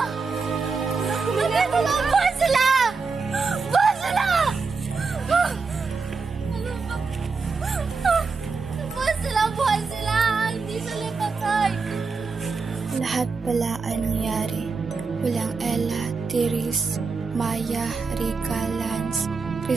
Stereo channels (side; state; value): left; quieter; 4.6 dB